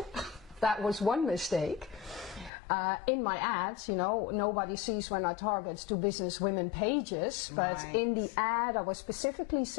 That was one mistake. In my ads, you know, nobody sees when I target to business women pages, but in the ad I was specifically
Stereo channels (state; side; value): drops out; right; at 2.5 s